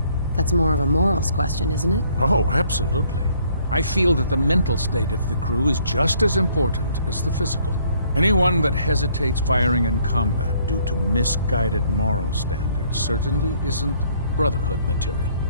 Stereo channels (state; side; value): inverted; both; correlation -0.63